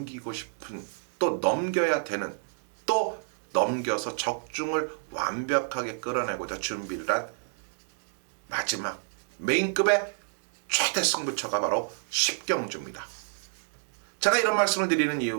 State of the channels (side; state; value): left; silent; digital silence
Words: 싶은 또 넘겨야 되는 또 넘겨서 적중을 완벽하게 끌어내고자 준비를 한 마지막 메인급의 최대 승부처가 바로 10경주입니다. 제가 이런 말씀을 드리는